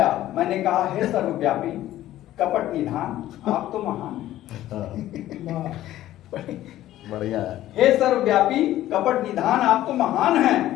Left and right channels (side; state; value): right; quieter; 14.0 dB